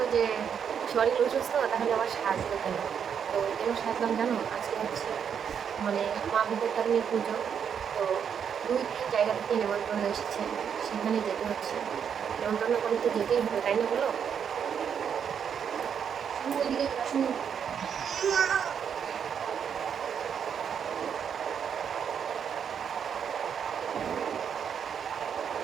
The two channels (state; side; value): quieter; left; 7.7 dB